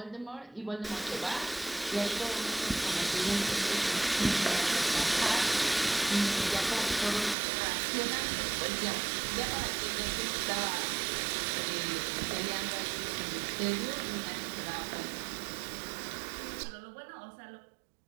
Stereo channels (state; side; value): drops out; left; at 7.4 s